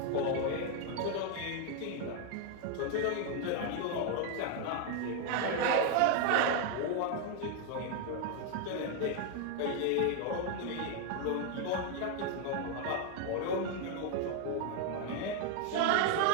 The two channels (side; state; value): both; different; correlation 0.01